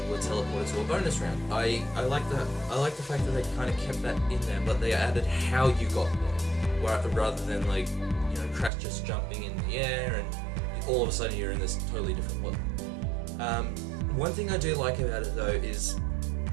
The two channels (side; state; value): left; drops out; at 8.7 s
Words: were teleported to a bonus round. I like that. I like the fact that they kind of kept that in there, but they added how you got there, rather than Crash just jumping in the air and all of a sudden you're in this totally different world. One thing I do like about it though is,